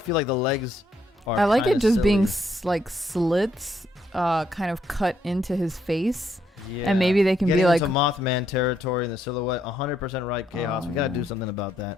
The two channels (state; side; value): normal; both; correlation 0.74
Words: like the legs are I like it just silly. being like slits kind of cut into his face. Yeah. And maybe they can Getting be like into Mothman territory in the silhouette. 100% right, Chaos. Oh, We gotta yeah. do something about